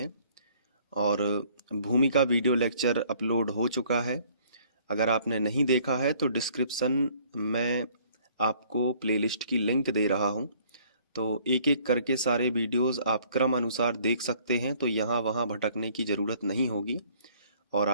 और भूमि का वीडियो लेक्चर अपलोड हो चुका है। अगर आपने नहीं देखा है तो डिस्क्रिप्शन में आपको प्लेलिस्ट की लिंक दे रहा हूँ, तो एक एक करके सारे वीडियोस आप क्रम अनुसार देख सकते हैं। तो यहाँ वहाँ भटकने की ज़रूरत नहीं होगी और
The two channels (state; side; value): inverted; both; correlation -0.59